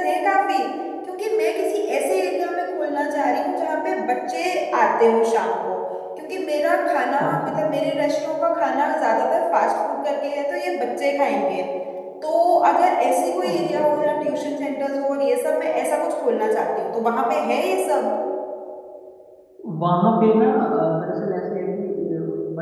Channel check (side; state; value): both; identical; correlation 1.00